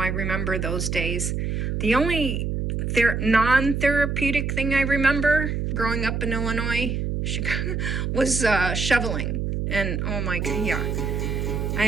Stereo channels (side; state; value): right; noise; hum, 1 dB below the sound